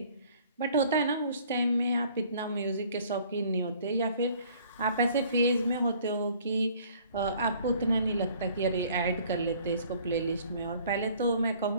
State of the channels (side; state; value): both; inverted; correlation -0.56